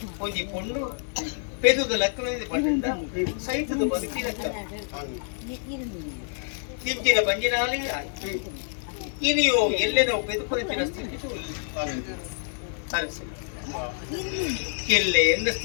ಒಂಜಿ ಪೊಂಡು ಪೆದುದ ಲಕ್ಕನದ ಪಂಡ ಸೈತದ ಬದುಕಿನ ತಿಂಚಿನ ಬಂಜಿನಾಲಿ ಇನಿಯೋ ಎಲ್ಲೆನೋ ಪೆದುಪಂಚಿನ ಸ್ಥಿತಿ ಅರಸೆ ಎಲ್ಲೆ ಎಂದ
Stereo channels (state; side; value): silent; right; digital silence